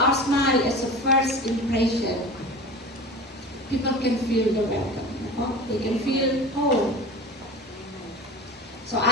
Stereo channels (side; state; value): both; normal; correlation 0.34